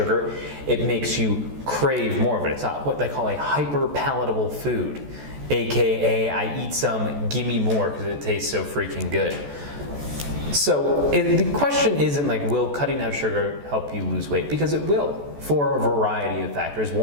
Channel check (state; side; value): late; left; 14 ms